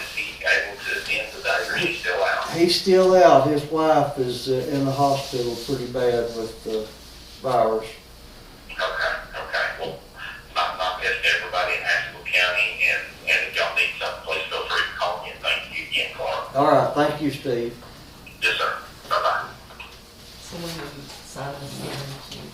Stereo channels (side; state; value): both; identical; correlation 1.00